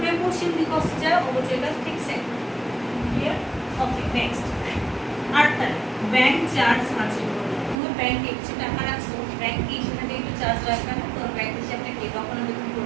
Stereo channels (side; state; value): left; drops out; at 7.8 s